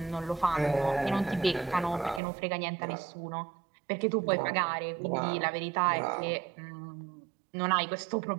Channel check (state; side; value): drops out; left; at 2.2 s